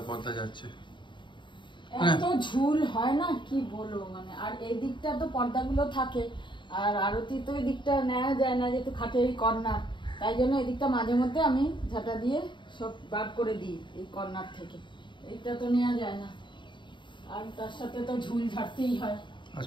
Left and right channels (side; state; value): right; late; 0.23 ms